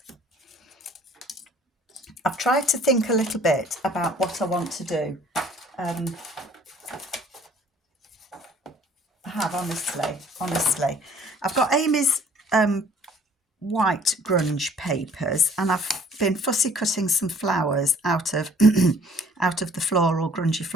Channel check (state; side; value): normal; both; correlation 0.55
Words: I've tried to think a little bit about what I want to do. I have, honestly. I've got Amy's white grunge papers, and I've been fussy cutting some flowers out of out of the floral, grungy